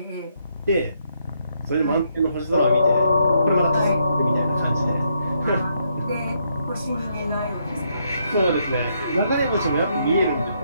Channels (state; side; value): inverted; both; correlation -0.75